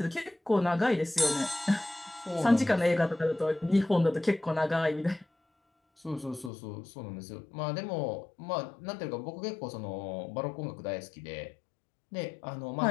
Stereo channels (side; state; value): right; drops out; at 6.5 s